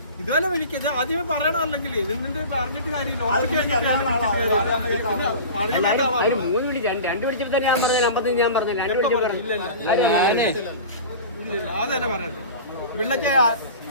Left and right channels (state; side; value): inverted; both; correlation -0.35